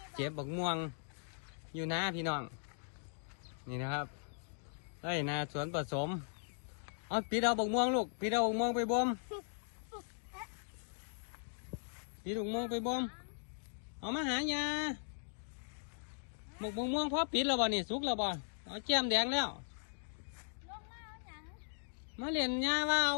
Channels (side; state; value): right; silent; digital silence